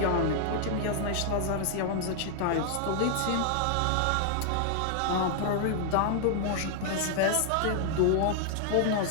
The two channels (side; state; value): both; different; correlation 0.00